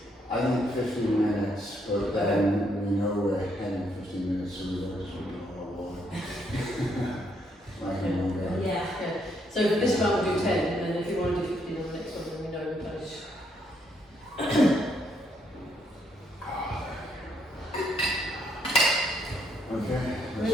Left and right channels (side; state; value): both; normal; correlation 0.73